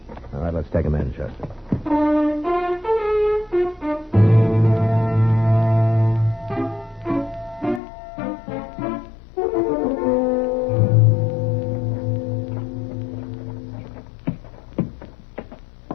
All right, let's take them in, Chester.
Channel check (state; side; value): drops out; right; at 7.8 s